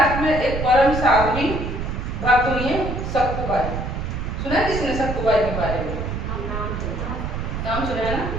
में एक परम साध्वी भक्त हुई है सक्कुबाई। सुना है किसने सक्कुबाई के बारे में? नाम सुना है ना,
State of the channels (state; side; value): noise; right; rumble, 4 dB below the sound